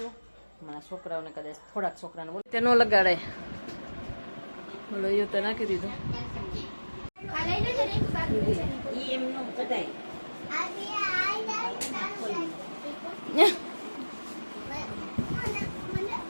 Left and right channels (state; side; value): inverted; both; correlation -1.00